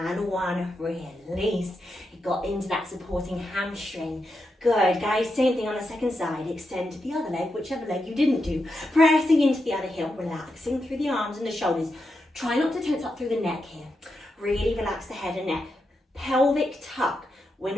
1. Release. It got into that supporting hamstring. Good, guys. Same thing on the second side. Extend the other leg, whichever leg you didn't do. Pressing into the other heel. Relaxing through the arms and the shoulders. Try not to tense up through the neck here. Really relax the head and neck. Pelvic tuck. We're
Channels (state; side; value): normal; both; correlation 0.86